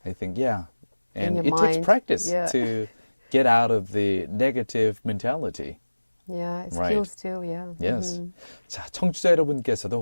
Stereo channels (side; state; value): both; inverted; correlation -1.00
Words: I think, yeah. And your it takes mind, practice yeah. to get out of the negative mentality. Yeah, it Right. skills too, yeah. Yes. 자, 청취자 여러분께서도